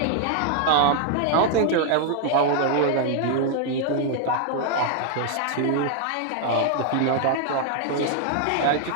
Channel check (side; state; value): both; different; correlation 0.00